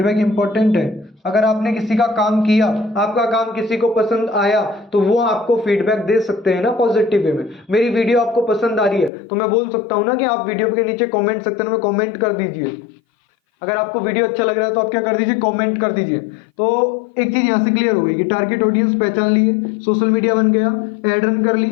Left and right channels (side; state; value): right; drops out; at 9.1 s